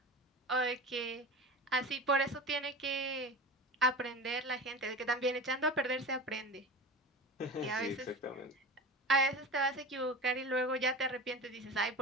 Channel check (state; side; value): normal; both; correlation 0.31